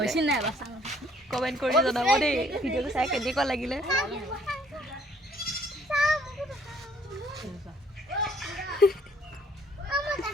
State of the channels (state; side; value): normal; both; correlation 0.62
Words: কমেণ্ট কৰি জনাব দেই ভিডিঅ'টো চাই কেনেকুৱা লাগিলে